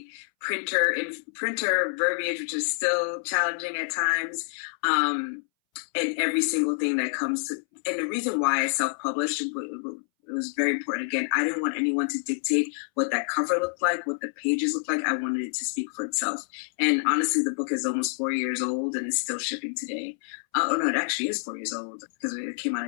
printer verbiage, which is still challenging at times, and every single thing that comes to. And the reason why I self-published, it was very important. Again, I didn't want anyone to dictate what that cover looked like, what the pages looked like. I wanted it to speak for itself. And honestly, the book is almost 4 years old and is still shipping today. It actually is 4 years old because it came out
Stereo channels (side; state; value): right; silent; 60 dB below the other